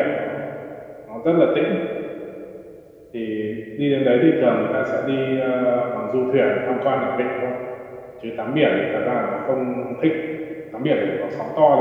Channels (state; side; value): identical; both; correlation 1.00